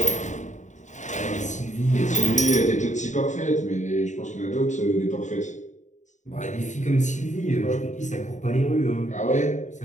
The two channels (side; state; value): right; late; 0.35 ms